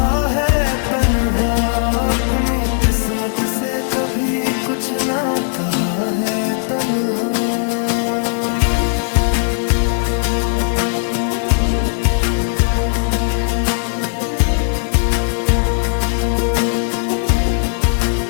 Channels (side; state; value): right; silent; digital silence